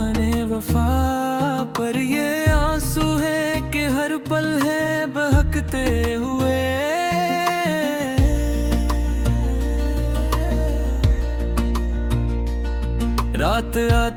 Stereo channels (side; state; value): both; identical; correlation 1.00